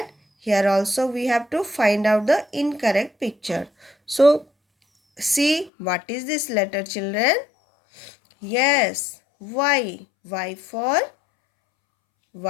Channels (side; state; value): right; drops out; at 5.7 s